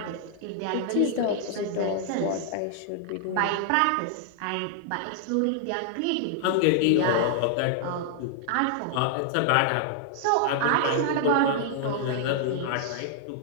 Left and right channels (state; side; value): different; both; correlation -0.01